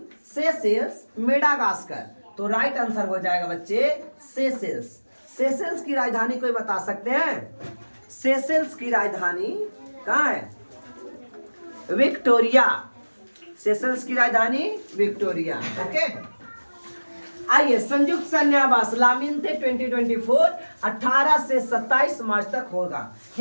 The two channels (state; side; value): inverted; both; correlation -1.00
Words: Seychelles, Madagascar. तो राइट आंसर हो जाएगा बच्चे सेशेल्स। सेशेल्स की राजधानी कोई बता सकते हैं, सेशेल्स की राजधानी कहाँ है, विक्टोरिया। सेशेल्स की राजधानी विक्टोरिया, ओके। आइए, संयुक्त सैन्य अभ्यास लामिन्ते 2024 18 से 27 मार्च तक होगा,